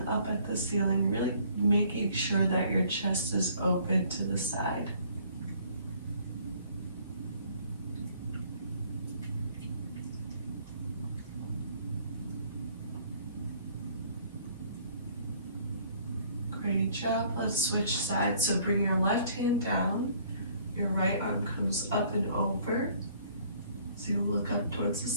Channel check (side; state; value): both; inverted; correlation -0.59